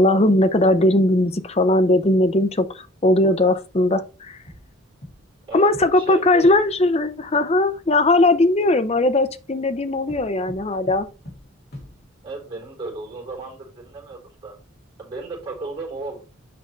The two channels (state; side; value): normal; both; correlation 0.43